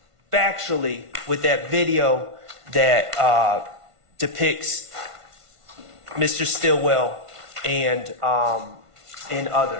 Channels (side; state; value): left; late; 1.5 ms